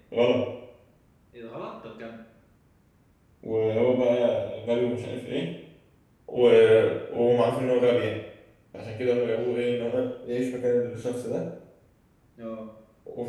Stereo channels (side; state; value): both; identical; correlation 1.00